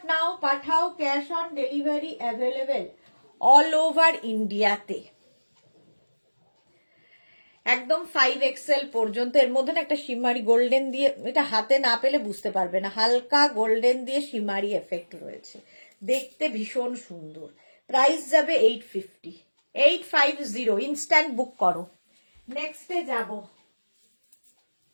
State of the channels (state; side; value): inverted; both; correlation -1.00